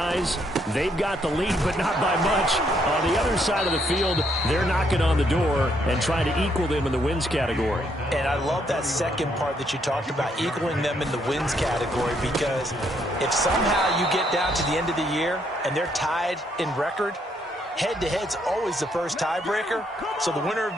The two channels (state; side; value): normal; both; correlation 0.72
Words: they've got the lead, but not by much. On the other side of the field, they're knocking on the door and trying to equal them in the wins category. And I love that second part that you talked about, equaling them in the wins category, because if somehow you get down to the end of the year and they're tied in record, head-to-head's always the first tiebreaker. So the winner